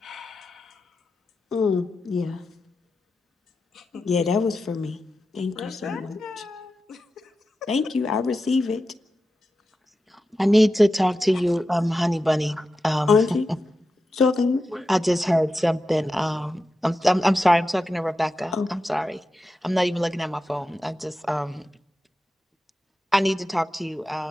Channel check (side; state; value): both; normal; correlation 0.91